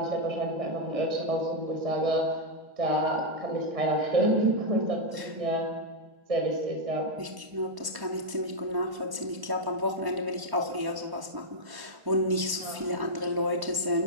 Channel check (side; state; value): left; late; 1.1 ms